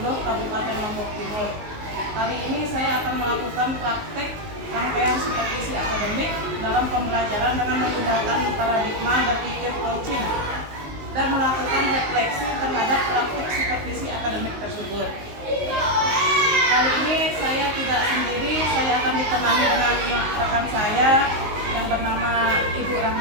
10 Kabupaten Lombok Timur. Kali ini saya akan melakukan praktek rangkaian supervisi akademik dalam pembelajaran dengan menggunakan paradigma berpikir coaching dan melakukan refleksi terhadap praktik supervisi akademik tersebut. Kali ini saya tidak sendiri, saya akan ditemani dengan rekan saya yang bernama Ibu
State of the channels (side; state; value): left; late; 19 ms